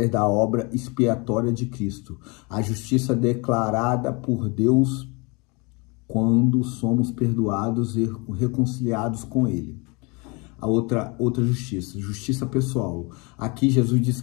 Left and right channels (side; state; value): right; quieter; 29.1 dB